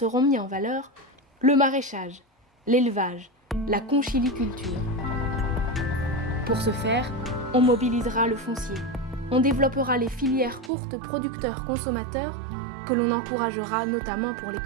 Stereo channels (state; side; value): drops out; left; at 10.7 s